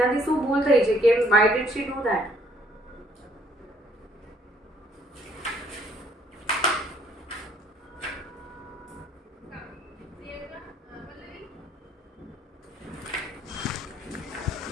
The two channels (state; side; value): normal; both; correlation 0.64